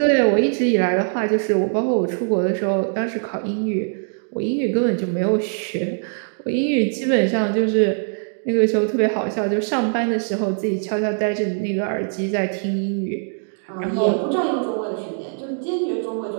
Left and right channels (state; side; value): silent; left; digital silence